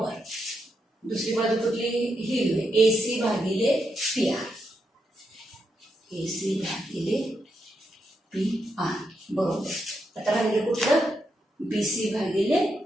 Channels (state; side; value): normal; both; correlation 0.83